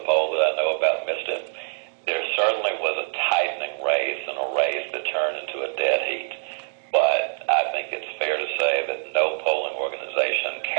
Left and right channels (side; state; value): left; silent; digital silence